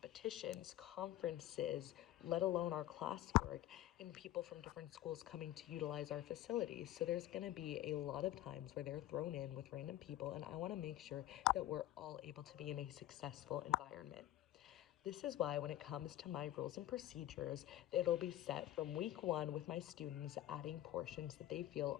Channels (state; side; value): quieter; right; 13.9 dB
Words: conferences, let alone our classwork, and people from different schools coming to utilize our facilities. So there's going to be a lot of times where they're thrown in with random people, and I want to make sure that we're all able to be in a successful environment. This is why when it comes to my rules and procedures, it'll be set from week 1 with my students adding portions that they feel